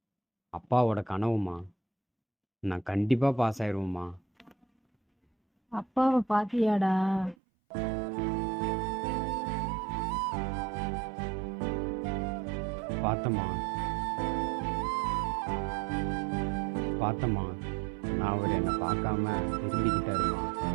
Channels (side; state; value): left; drops out; at 7.4 s